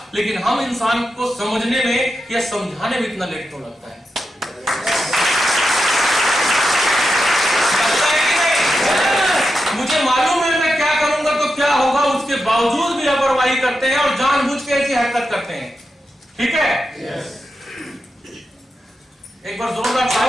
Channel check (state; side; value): normal; both; correlation 0.88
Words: लेकिन हम इंसान को समझने में या समझाने में इतना लेट तो लगता है। लापरवाही करते हैं और जानबूझ के ऐसी हरकत करते हैं। ठीक है? एक बार जोरदार